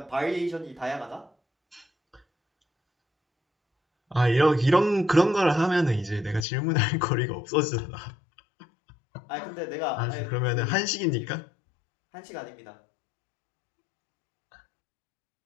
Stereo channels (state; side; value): drops out; right; at 6.5 s